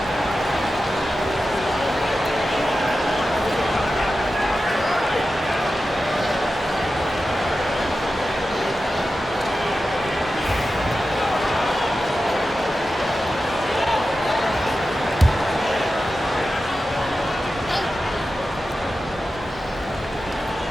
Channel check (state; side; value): normal; both; correlation 0.92